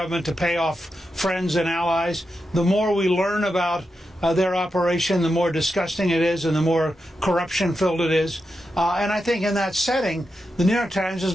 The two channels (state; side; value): normal; both; correlation 0.88